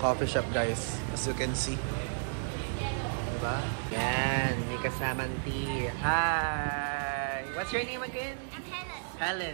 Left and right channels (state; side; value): silent; left; 56 dB below the other